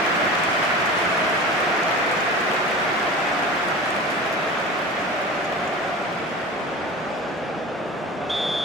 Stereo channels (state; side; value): normal; both; correlation 0.34